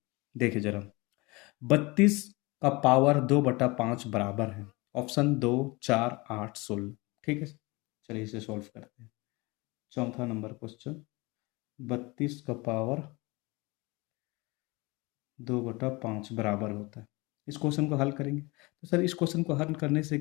देखिए जरा। 32 का पावर 2/5 बराबर है, ऑप्शन 2, 4, 8, 16। ठीक है, चलिए इसे सॉल्व करते हैं। चौथा नंबर क्वेश्चन, 32 का पावर 2/5 बराबर होता है, इस क्वेश्चन को हल करेंगे। तो सर इस क्वेश्चन को हल करने से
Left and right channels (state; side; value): quieter; right; 24.6 dB